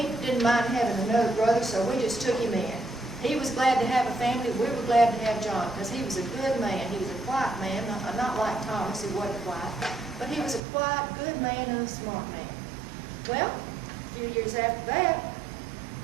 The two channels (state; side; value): drops out; left; at 10.6 s